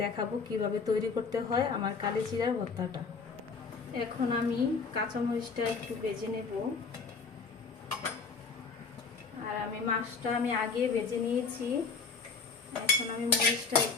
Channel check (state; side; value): quieter; right; 5.1 dB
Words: দেখাবো কিভাবে তৈরি করতে হয় আমার কালিজিরার ভর্তাটা। এখন আমি কাঁচামরিচটা একটু ভেজে নেব। আর আমি মাছটা আগে ভেজে নিয়েছি, এখন আমি মরিচটা